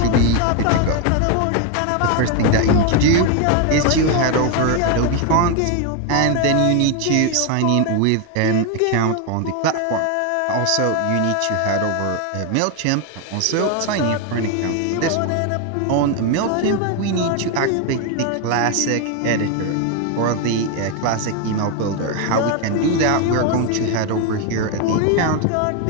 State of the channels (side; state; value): both; different; correlation 0.01